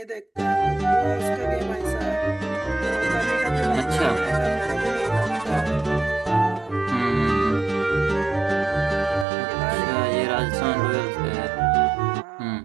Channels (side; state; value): left; drops out; at 9.2 s